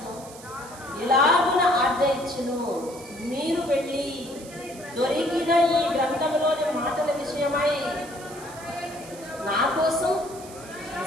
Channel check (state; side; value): noise; right; hiss, 18 dB below the sound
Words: ఇలాగున ఆజ్ఞ ఇచ్చెను, మీరు వెళ్ళి దొరికిన ఈ గ్రంథంలోని మాటల విషయమై నా కోసం